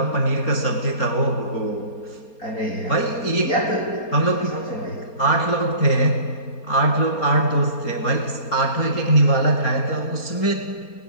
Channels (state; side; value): late; right; 4.3 ms